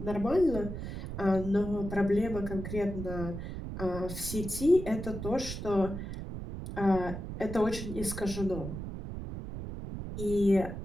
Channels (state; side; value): noise; right; rumble, 7 dB below the sound